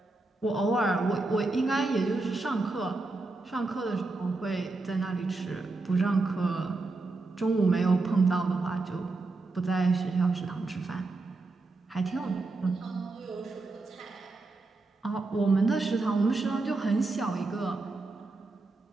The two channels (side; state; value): left; quieter; 3.4 dB